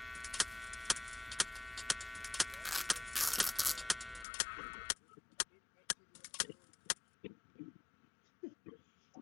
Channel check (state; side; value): drops out; right; at 4.2 s